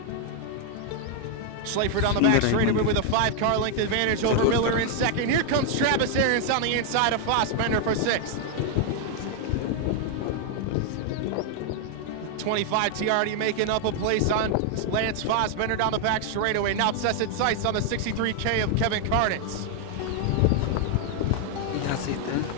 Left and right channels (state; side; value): different; both; correlation 0.00